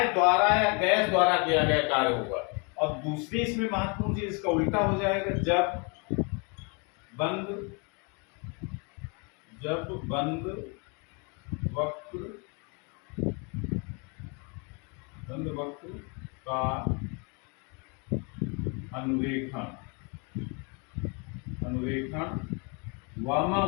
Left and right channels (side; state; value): right; quieter; 33.6 dB